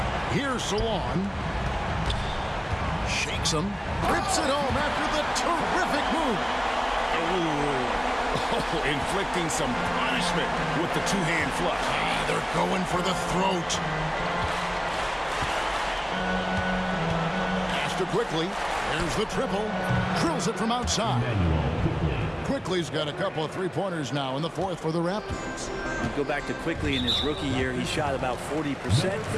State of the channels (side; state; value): both; identical; correlation 1.00